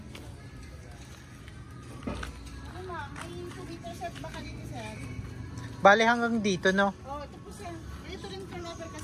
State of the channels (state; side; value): identical; both; correlation 1.00